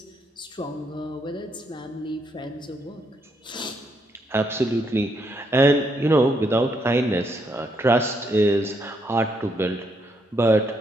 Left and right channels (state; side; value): normal; both; correlation 0.75